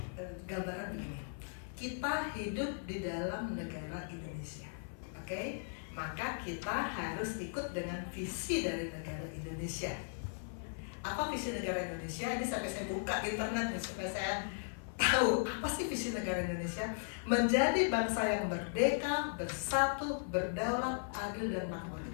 gambaran begini. Kita hidup di dalam negara Indonesia, oke? Maka kita harus ikut dengan visi dari negara Indonesia. Apa visi negara Indonesia? Ini sampai saya buka internet supaya saya tahu apa sih visi negara Indonesia. Menjadi bangsa yang merdeka, bersatu, berdaulat, adil dan makmur.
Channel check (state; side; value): silent; right; 53 dB below the other